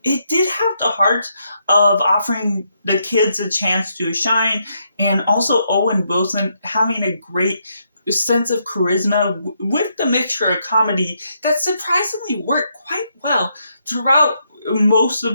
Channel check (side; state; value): both; inverted; correlation -0.78